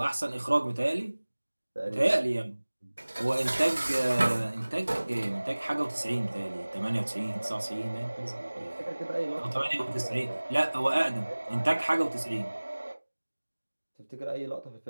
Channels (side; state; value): both; inverted; correlation -1.00